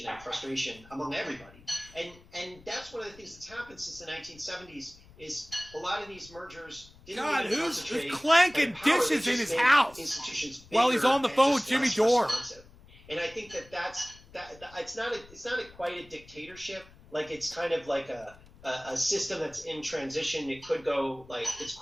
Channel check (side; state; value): left; noise; rumble, 23 dB below the sound